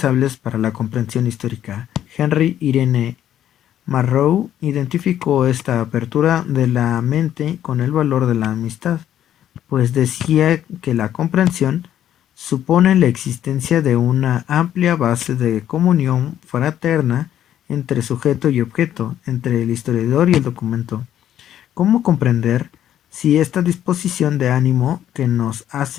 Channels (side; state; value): right; quieter; 11.1 dB